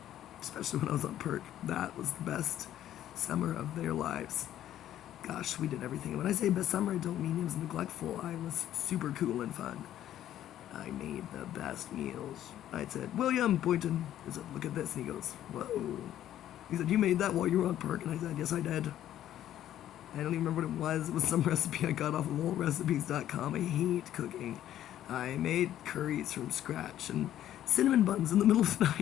Especially when I was on perk. That was the best summer of their lives. Gosh, we did everything. When I say best summer, I don't mean it was neglectful. I was super cool and fun. I made the best meals. I said, "William," Boynton, I said, "look at this." And he goes, "Whoa." He said, "You made that while you were on perk?" And I said, "Yes, I did." I don't even remember what it was. It was some recipe I got off of oldrecipes.com. I hate cooking. I made curries from scratch and cinnamon buns in the middle of the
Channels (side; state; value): right; quieter; 12.0 dB